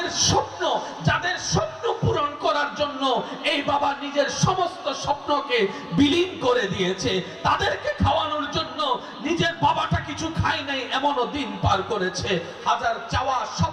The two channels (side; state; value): both; identical; correlation 1.00